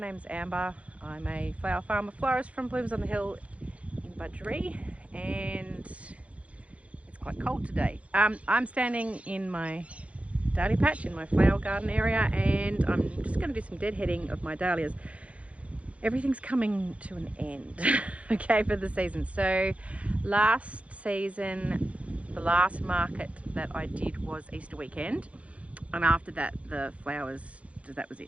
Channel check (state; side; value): late; left; 0.064 ms